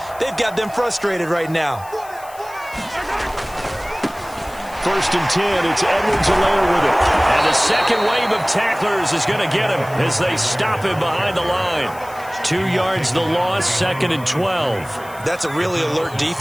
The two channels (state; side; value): noise; left; hiss, 21 dB below the sound